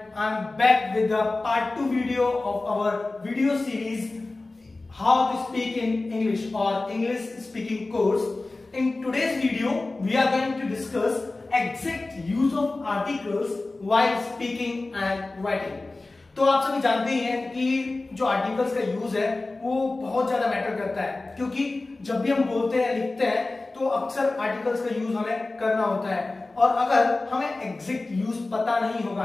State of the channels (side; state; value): right; quieter; 3.2 dB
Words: I'm back with the part 2 video of our video series How to Speak in English or English Speaking course. In today's video, we are going to discuss exact use of articles while speaking and writing. तो आप सभी जानते ही हैं कि जो आर्टिकल्स का यूज है वो बहुत ज्यादा मैटर करता है, क्योंकि जब भी हम बोलते हैं लिखते हैं तो अक्सर आर्टिकल्स का यूज हमें करना होता है, और अगर हमें एग्जैक्ट यूज पता नहीं होगा